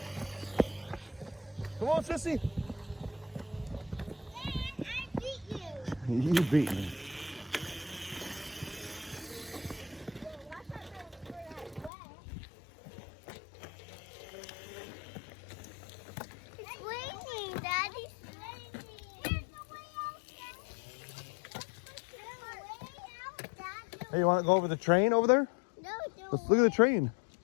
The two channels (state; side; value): drops out; right; at 11.9 s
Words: Come on, sissy. Dad, I beat you. You beat me. It's raining, Daddy. It's raining. There's no way out, Dad. Hey, you want to go over the train over there? No, Let's look at the train.